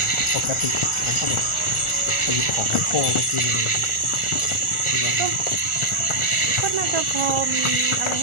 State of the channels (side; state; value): right; late; 1.4 ms